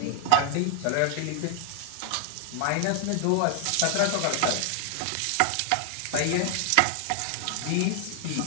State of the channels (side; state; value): both; different; correlation 0.00